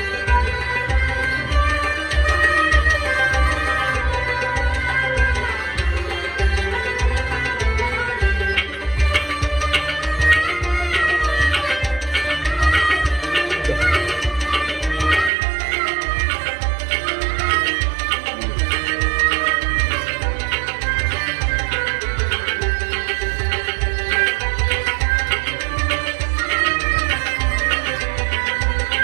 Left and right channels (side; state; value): left; drops out; at 15.3 s